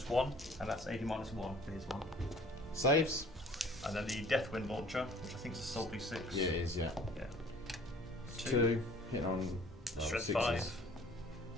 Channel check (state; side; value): normal; both; correlation 0.52